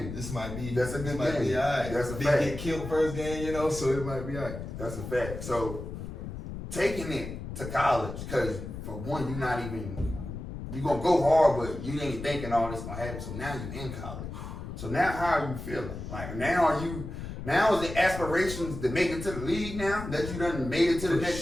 This might be. That's a good game. Be all right. That's a Didn't fact. get killed first game, you know, so it might be all right. That's a fact. So, taking it to college, because for one, you're going to go hard, but you ain't thinking all this going to happen. So now you're in college. So now how are you feeling? Like now is the aspirations to make it to the league now that you done made it to the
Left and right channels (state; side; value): noise; left; rumble, 8 dB below the sound